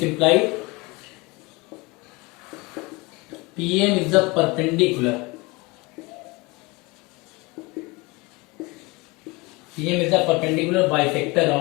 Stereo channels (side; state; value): right; quieter; 25.0 dB